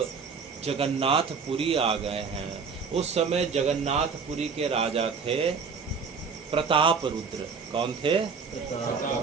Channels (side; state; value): left; quieter; 5.5 dB